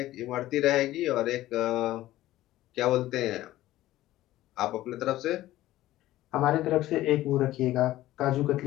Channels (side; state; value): right; quieter; 15.4 dB